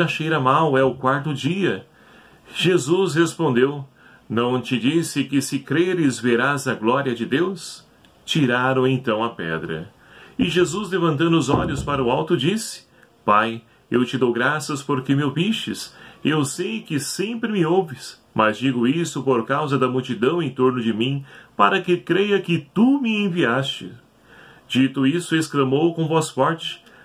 cheira mal, é o 4º dia. Jesus respondeu: não te disse que se creres verás a glória de Deus? Tiraram então a pedra. E Jesus, levantando os olhos para o alto, disse: Pai, eu te dou graças porque me ouvistes. Eu sei que sempre me ouves, mas digo isso por causa da multidão em torno de mim, para que creia que tu me enviaste. Dito isso, exclamou com voz forte:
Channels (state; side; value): identical; both; correlation 1.00